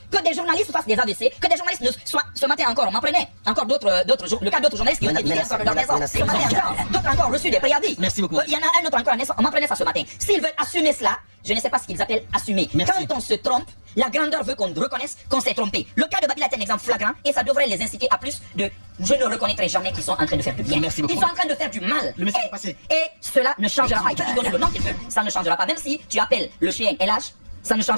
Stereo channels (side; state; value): both; inverted; correlation -1.00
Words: que des journalistes fassent des AVC, que des journalistes ne soient... Ce matin encore, on m'apprenait encore le cas d'autres journalistes qui ont été tués encore de leur maison. Ce matin encore, d'autres encore reçu des préavis. Merci beaucoup. Il y en a un autre encore, on m'apprenait ça ce matin. S'ils veulent assumer cela, je ne sais pas ce qu'ils appellent assumer. Merci. Quand on se trompe, la grandeur veut qu'on reconnaisse qu'on s'est trompé. Le cas de Babila est un exemple flagrant et ça devrait les inciter à plus de... Je ne reconnaîtrai jamais qu'ils sont en train de faire du bien. Merci beaucoup. Ils sont en train de faire du mal. Le message est passé. Et cela ne changera pas. Ils peuvent lui donner le nom qu'ils veulent, ça ne changera pas. Même si tu appelles le chien LH, ça ne